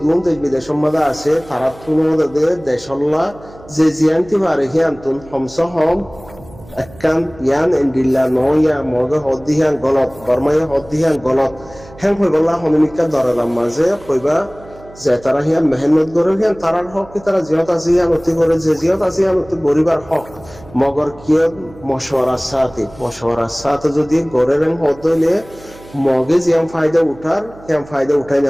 গুণ দেশ বিদেশের মাঝে আছে তারা তুলনাতে দেশল্লা যে জিয়ান্তি পারে হিয়ান্তুন হমস হম একান ইয়ান এন্ডিল্লা নয়া মগে হদ্দিহান গলত বর্মায় হদ্দিহান গলত হ্যাং হইবল্লা হমিকা দরালাম মাঝে কইবা যে তারা হিয়ান মেহনত করে হিয়ান তারার হক কি তারা জিয়ত আছে হিয়ান অতি করে যে জিয়ত আছে হিয়ান অতি গরিবার হক মগর কিয় মশওয়ারার সাথে যদি গড়ের হদলে মগে জিয়াম ফায়দা উঠাই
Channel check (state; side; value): noise; right; hum, 21 dB below the sound